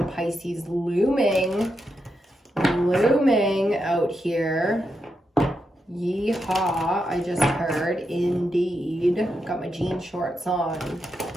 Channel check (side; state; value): both; normal; correlation 0.85